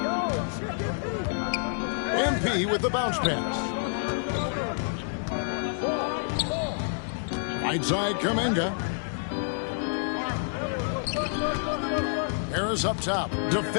MP with the bounce pass. Right side, Kuminga. Harris up top,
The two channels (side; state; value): right; silent; digital silence